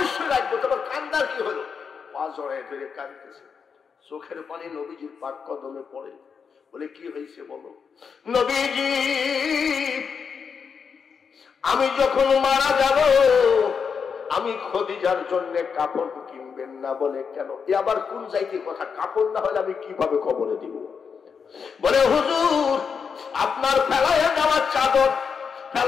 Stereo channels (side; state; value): right; quieter; 6.1 dB